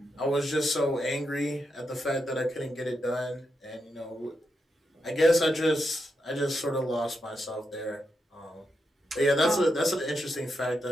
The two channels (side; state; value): both; normal; correlation 0.85